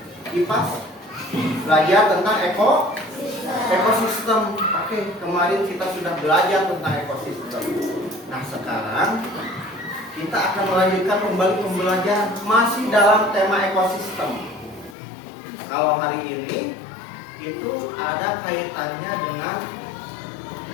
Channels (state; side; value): drops out; right; at 15.0 s